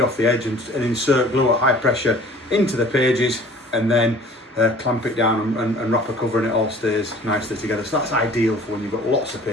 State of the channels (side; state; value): both; normal; correlation 0.48